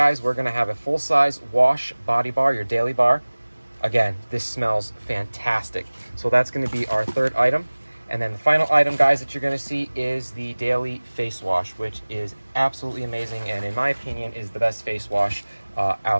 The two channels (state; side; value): inverted; both; correlation -1.00